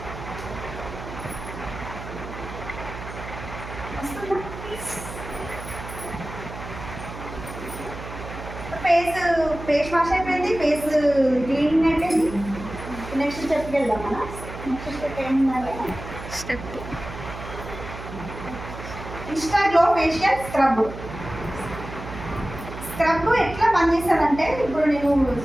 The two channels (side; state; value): right; noise; hum, 11 dB below the sound